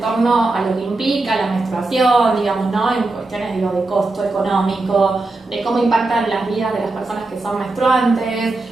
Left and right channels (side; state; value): left; quieter; 3.1 dB